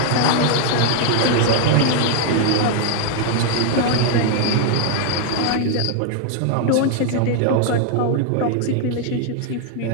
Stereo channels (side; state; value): both; different; correlation 0.00